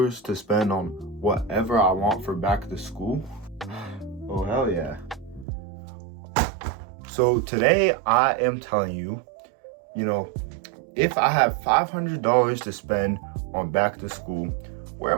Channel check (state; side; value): drops out; left; at 5.5 s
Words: to spend on whatever I want for back to school. Oh hell yeah. So today I am telling you, if I have $500 to spend on back to school, where